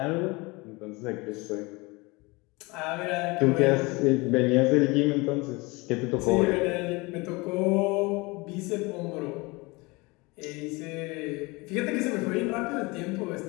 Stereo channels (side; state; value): right; quieter; 25.1 dB